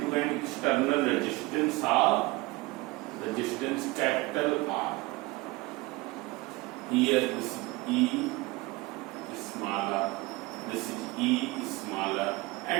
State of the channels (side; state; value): left; quieter; 22.1 dB